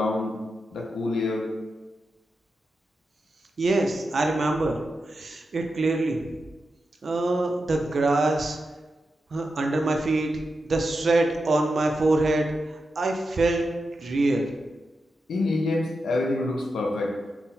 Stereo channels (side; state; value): both; normal; correlation 0.88